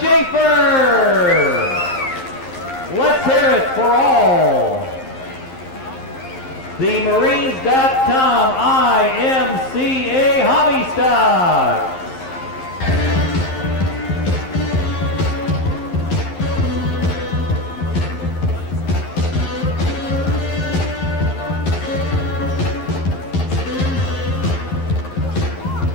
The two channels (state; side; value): late; right; 11 ms